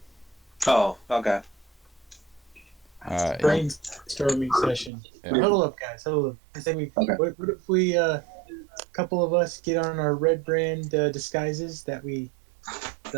Oh, okay. Brainstorming session. Yeah. Huddle up, guys. Huddle up. I think what if we, a couple of us get on our red brand disguises the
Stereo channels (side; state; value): left; drops out; at 4.9 s